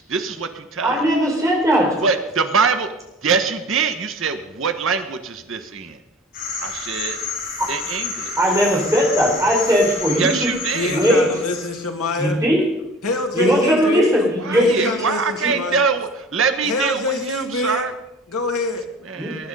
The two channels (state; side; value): normal; both; correlation 0.45